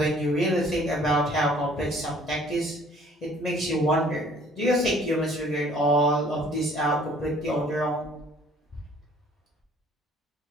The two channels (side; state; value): both; normal; correlation 0.55